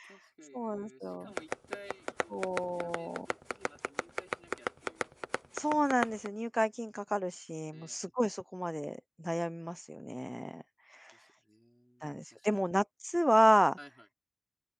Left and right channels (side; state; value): both; identical; correlation 1.00